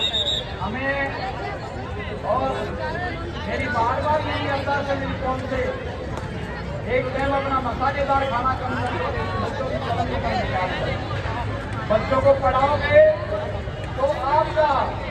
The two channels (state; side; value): identical; both; correlation 1.00